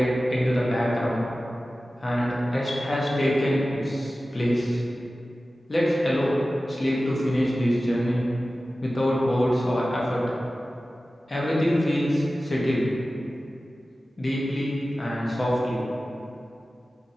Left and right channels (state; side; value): normal; both; correlation 0.95